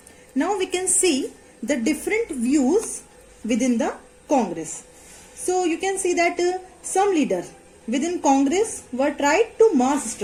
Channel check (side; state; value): both; identical; correlation 1.00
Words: Now we can see the different views within the Congress. So you can see that some leaders within Congress were tried to mass